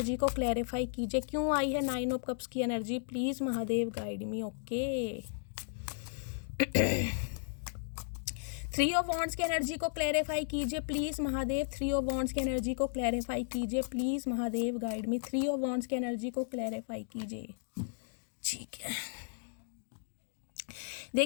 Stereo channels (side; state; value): right; silent; digital silence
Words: को क्लैरिफाई कीजिए, क्यों आई है 9 ऑफ कप्स की energy, please Mahadev guide me. Okay 3 of wands की एनर्जी को क्लैरिफाई कीजिए प्लीज़ महादेव। 3 ऑफ वॉन्ड्स की एनर्जी को क्लैरिफाई कीजिए please Mahadev guide me. 3 of wands की एनर्जी को क्लैरिफाई कीजिए। ठीक है,